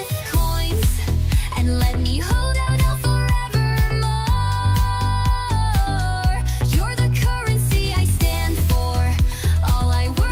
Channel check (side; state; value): both; identical; correlation 1.00